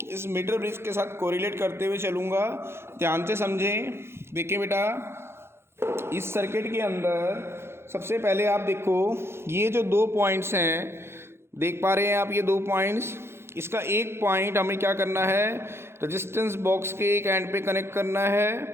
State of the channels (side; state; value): left; late; 0.12 ms